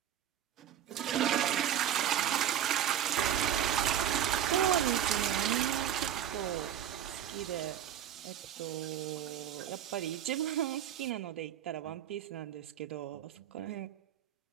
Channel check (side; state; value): left; quieter; 10.2 dB